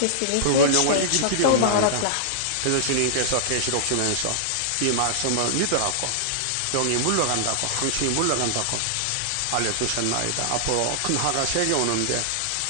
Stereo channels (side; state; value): both; different; correlation -0.01